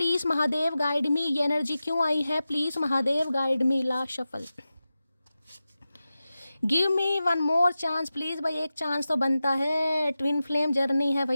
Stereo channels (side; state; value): both; inverted; correlation -0.94